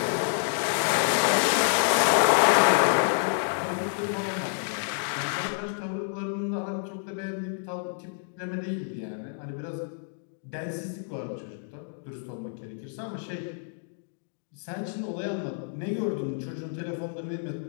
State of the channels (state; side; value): silent; right; digital silence